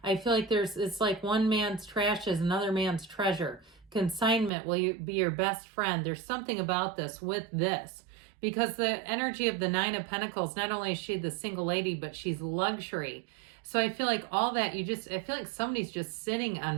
I feel like it's like one man's trash is another man's treasure. Consignment will be your best friend. There's something about this with this. Because the energy of the Nine of Pentacles, not only is she the single lady, but she's luxury. So I feel like all that, I feel like somebody's just sitting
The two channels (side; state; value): left; drops out; at 4.5 s